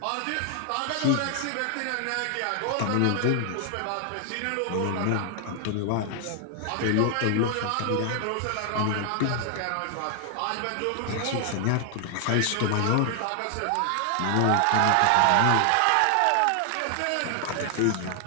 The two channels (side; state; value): both; different; correlation 0.00